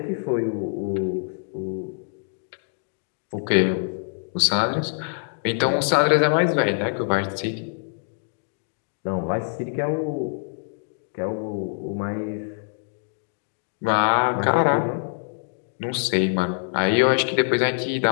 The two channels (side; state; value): right; silent; digital silence